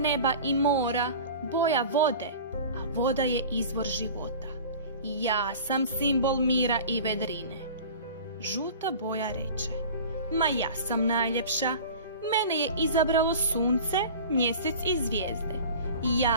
i mora, boja vode, a voda je izvor života. Ja sam simbol mira i vedrine. Žuta boja reče: ma ja sam najljepša. Mene je izabralo sunce, mjesec i zvijezde.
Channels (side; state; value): both; inverted; correlation -0.39